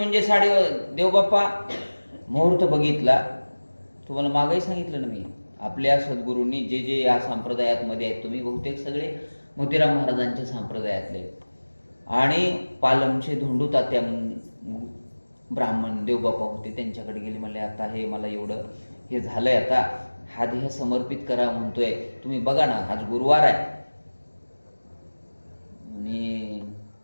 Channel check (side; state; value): both; inverted; correlation -1.00